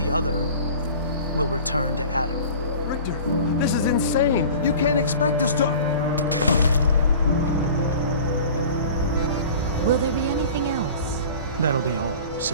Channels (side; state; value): both; inverted; correlation -0.41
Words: other will return to Adam. Richter, this is insane. You can't expect us to— Will there be anything else? That'll be all,